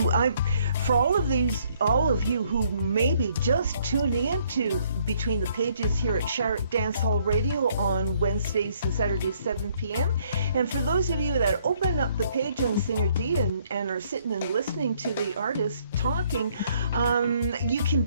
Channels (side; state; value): both; inverted; correlation -0.66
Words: for all of you who may be just tuning into Between the Pages here at Shark Dance Hall Radio on Wednesdays and Saturdays 7 p.m. and for those of you that open up the page on Singer Dee and are sitting and listening to the artist talking, you can